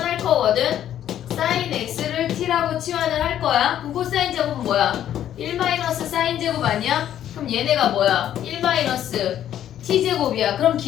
거거든. 사인 x를 t라고 치환을 할 거야. 그럼 코사인 제곱은 뭐야? 1 마이너스 사인 제곱 아니야? 그럼 얘네가 뭐야? 1 마이너스 t제곱이야. 그럼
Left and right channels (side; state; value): right; quieter; 11.0 dB